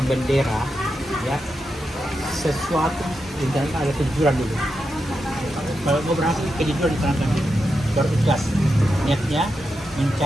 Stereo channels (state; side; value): normal; both; correlation 0.87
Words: bendera, ya sesuatu yang ada kejujuran dulu. Kalau mau berhasil kejujuran ditanamkan dulu, baru ikhlas. Niatnya